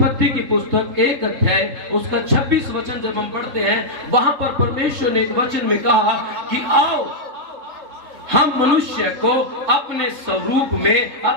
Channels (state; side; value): late; left; 3.6 ms